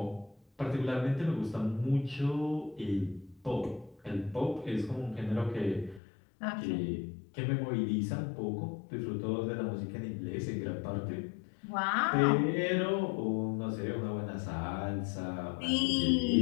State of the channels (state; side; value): drops out; right; at 6.0 s